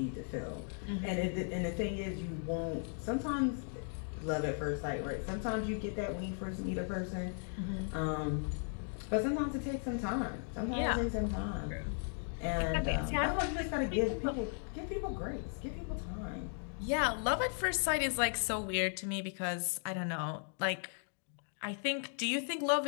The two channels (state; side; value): silent; right; 53 dB below the other